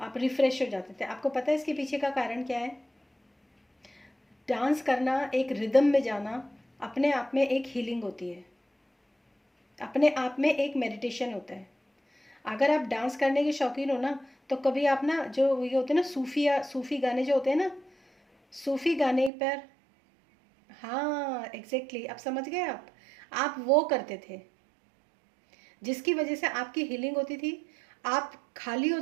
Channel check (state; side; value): drops out; left; at 19.3 s